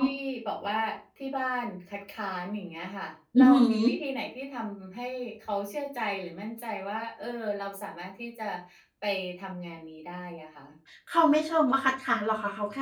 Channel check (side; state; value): both; identical; correlation 1.00